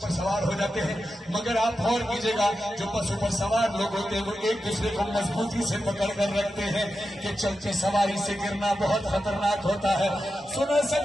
पर सवार हो जाते हैं, मगर आप गौर कीजिएगा जो बसों पर सवार लोग होते हैं वो एक दूसरे को मजबूती से पकड़ कर रखते हैं कि चलते सवारी से गिरना बहुत खतरनाक होता है। सुनो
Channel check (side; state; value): both; normal; correlation 0.90